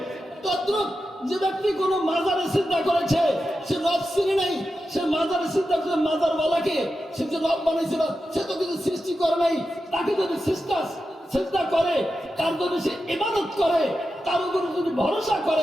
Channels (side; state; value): both; normal; correlation 0.90